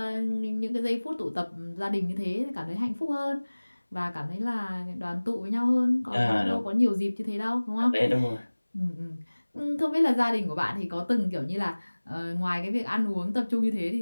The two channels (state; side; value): inverted; both; correlation -1.00